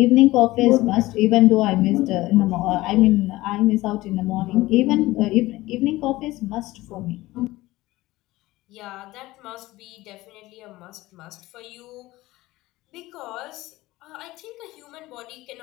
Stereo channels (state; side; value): quieter; right; 18.4 dB